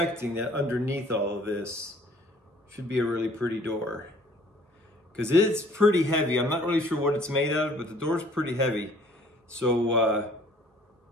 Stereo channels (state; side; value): normal; both; correlation 0.56